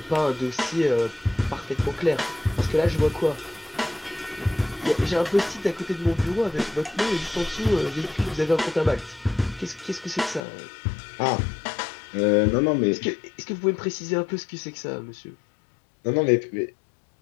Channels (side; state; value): right; drops out; at 10.4 s